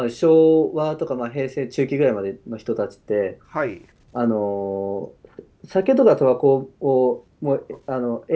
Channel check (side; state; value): both; identical; correlation 1.00